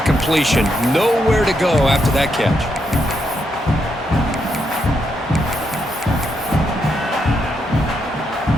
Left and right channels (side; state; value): both; normal; correlation 0.80